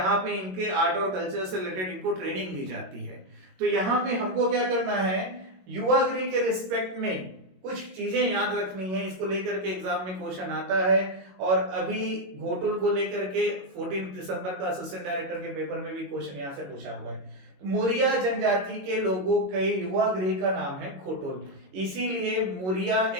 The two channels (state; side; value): late; left; 22 ms